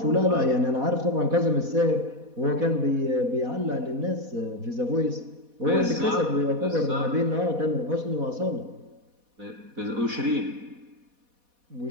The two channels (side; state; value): left; late; 4.1 ms